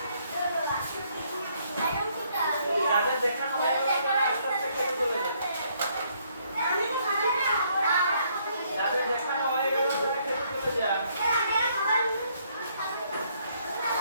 যাদের দেখানো হয়ে গেল তারা আস্তে আস্তে কেটে চলে যাবে যাদের দেখানো হয়ে গেল তারা কেটে চলে যায়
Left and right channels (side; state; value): both; inverted; correlation -0.69